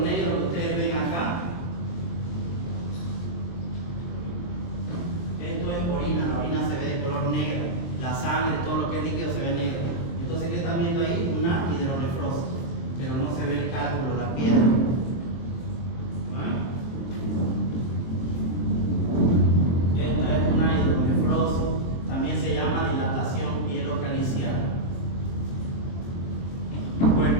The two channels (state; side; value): late; right; 23 ms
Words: que ustedes ven acá, esto es orina. La orina se ve de color negro, la sangre, todo lo que es líquido se ve negro. Entonces, ¿qué están viendo ahí? Una hidronefrosis, pero no se ve el cálculo, la piedra. Esta es una hidronefrosis, también se llama dilatación pielocalicial. Bueno,